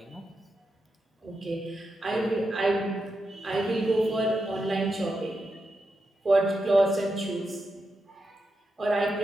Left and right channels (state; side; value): normal; both; correlation 0.86